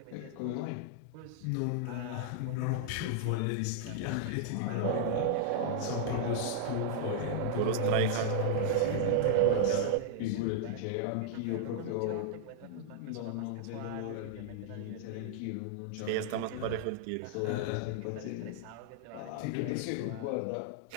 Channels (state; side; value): different; both; correlation -0.01